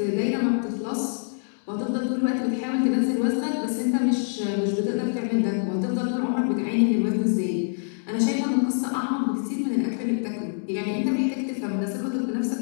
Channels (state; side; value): silent; right; digital silence